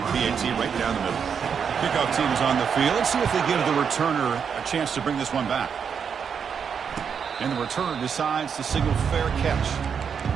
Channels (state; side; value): quieter; left; 6.9 dB